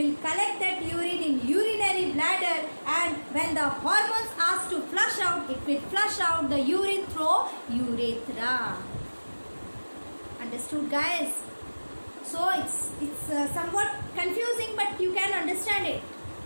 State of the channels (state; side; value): inverted; both; correlation -1.00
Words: collect that urine in urinary bladder, and when the hormones ask to flush out, it will flush out the urine through urethra. Understood, guys? So it's somewhat confusing, but you can understand it.